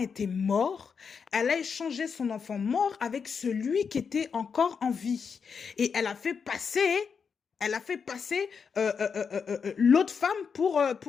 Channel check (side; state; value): right; quieter; 6.1 dB